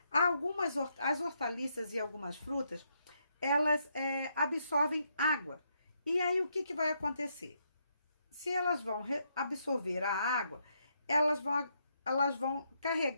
As hortaliças e algumas frutas, elas absorvem água. E aí, o que vai acontecer? Se elas vão absorver a água, elas vão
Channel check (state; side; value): inverted; both; correlation -0.77